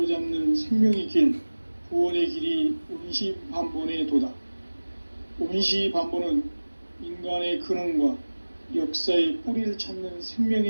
생명의 길, 구원의 길이 온시반본의 도다. 온시반본은 인간의 근원과 역사의 뿌리를 찾는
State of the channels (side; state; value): both; inverted; correlation -1.00